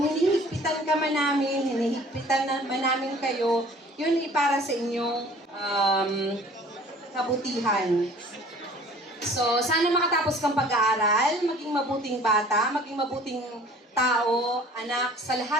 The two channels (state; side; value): normal; both; correlation 0.49